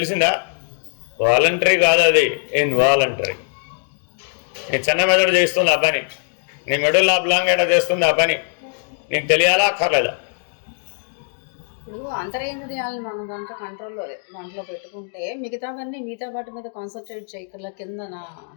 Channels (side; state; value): right; silent; digital silence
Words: వాలంటరీ కాదు, అది ఇన్వాలంటరీ. నీ చిన్న మెదడు చేస్తుంది ఆ పని, నీ మెడల్ ఆబ్లాంగేట చేస్తుంది ఆ పని, నీకు తెలియాలా అక్కర్లేదా? ఇప్పుడు అంతరేంద్రియాలను మనం దాంట్లో పెట్టుకుంటే మిగతా వాటి మీద కాన్సన్ట్రేట్ చేయగల కింద